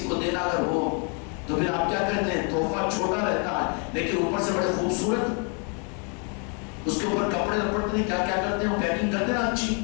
کو دینا اگر ہو تو پھر آپ کیا کہتے ہیں؟ تحفہ چھوٹا رہتا ہے لیکن اوپر سے بڑے خوبصورت. اس کے اوپر کپڑے لپٹتے ہیں، کیا کیا کرتے ہیں؟ پیکنگ کرتے ہیں اچھی.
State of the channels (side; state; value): right; quieter; 37.4 dB